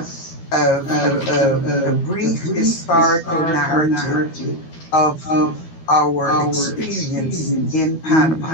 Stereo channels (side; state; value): right; late; 12 ms